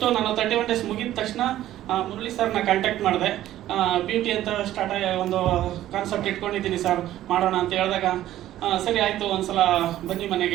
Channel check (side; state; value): left; quieter; 13.4 dB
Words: ನಾನು 31 ಡೇಸ್ ಮುಗಿದ ತಕ್ಷಣ ಮುರಳಿ ಸರ್ನ ಕಾಂಟ್ಯಾಕ್ಟ್ ಮಾಡಿದೆ. ಬ್ಯೂಟಿ ಅಂತ ಸ್ಟಾರ್ಟ್ ಆಗಿ ಒಂದು ಕಾನ್ಸೆಪ್ಟ್ ಇಟ್ಕೊಂಡಿದ್ದೀನಿ ಸರ್, ಮಾಡೋಣ ಅಂತ ಹೇಳಿದಾಗ ಸರಿ ಆಯಿತು, ಒಂದ್ಸಲ ಬನ್ನಿ